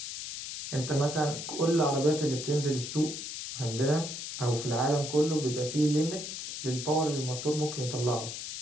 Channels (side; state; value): left; noise; hiss, 7 dB below the sound